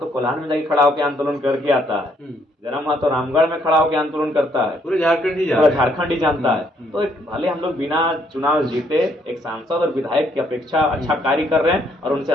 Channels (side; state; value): both; normal; correlation 0.69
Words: कोल्हान में जाके खड़ा होकर आंदोलन करके आता है, जयराम महतो रामगढ़ में खड़ा होकर आंदोलन करता है, पूरे झारखंड ही पूरा झारखंड ही जानता है। तो भले हम लोग बिना चुनाव जीते एक सांसद और विधायक की अपेक्षा अच्छा कार्य कर रहे हैं और उनसे